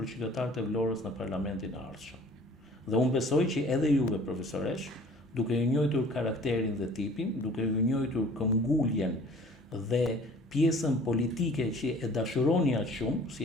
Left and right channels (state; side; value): normal; both; correlation 0.50